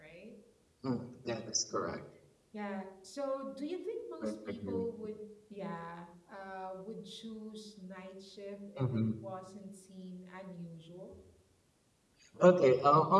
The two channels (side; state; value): both; identical; correlation 1.00